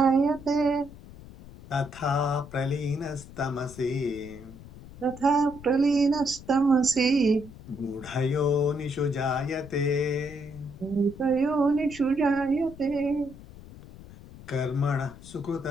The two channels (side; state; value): left; noise; rumble, 17 dB below the sound